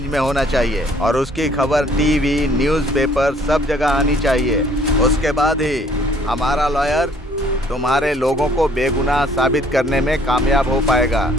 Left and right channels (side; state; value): both; normal; correlation 0.59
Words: में होना चाहिए और उसकी खबर टीवी, न्यूज़पेपर सब जगह आनी चाहिए। उसके बाद ही हमारा लॉयर तुम्हारे लोगों को बेगुनाह साबित करने में कामयाब हो पाएगा।